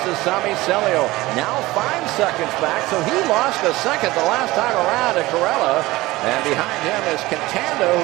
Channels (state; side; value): quieter; left; 19.2 dB